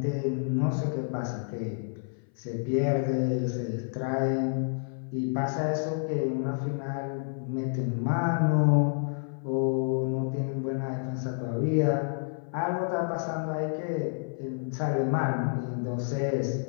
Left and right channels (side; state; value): right; silent; 56 dB below the other